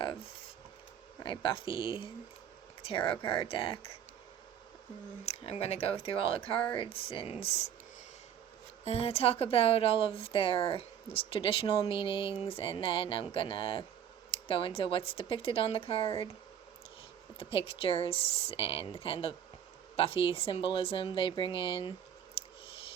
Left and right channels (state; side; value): quieter; left; 9.2 dB